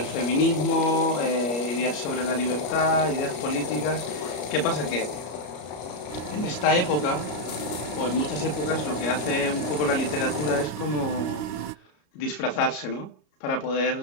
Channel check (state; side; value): late; right; 34 ms